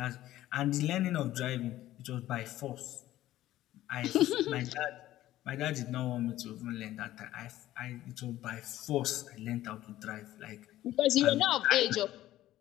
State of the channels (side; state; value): right; quieter; 14.5 dB